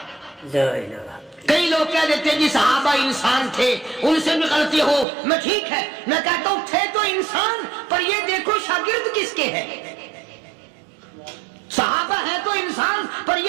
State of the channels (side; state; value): left; drops out; at 5.1 s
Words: لا الہ۔ کئی لوگ کہہ دیتے جی صحابہ انسان تھے، ان سے بھی غلطی ہو، میں ٹھیک ہے، میں کہتا ہوں تھے تو انسان، پر یہ دیکھو شاگرد کس کے ہیں۔ صحابہ ہے تو انسان، پر